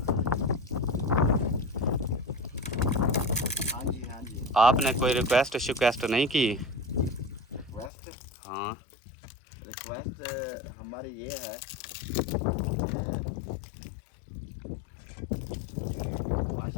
हाँ जी। आपने कोई रिक्वेस्ट नहीं की? रिक्वेस्ट? हाँ रिक्वेस्ट हमारी ये है,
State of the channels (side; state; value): right; drops out; at 7.9 s